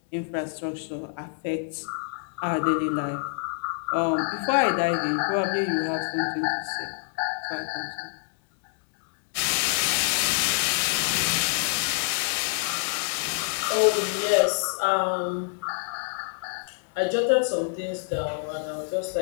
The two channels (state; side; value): silent; right; digital silence